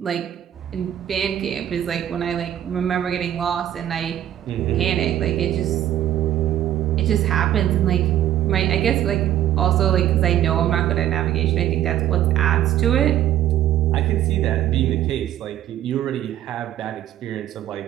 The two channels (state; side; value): quieter; left; 11.9 dB